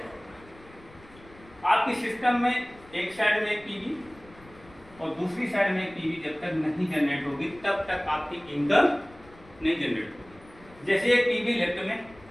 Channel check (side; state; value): left; noise; rumble, 24 dB below the sound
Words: आपके सिस्टम में एक साइड में एक पीवी और दूसरी साइड में एक पीवी जब तक नहीं जनरेट होगी तब तक आपकी इनकम नहीं जनरेट होगी। जैसे एक पीवी लेफ्ट में,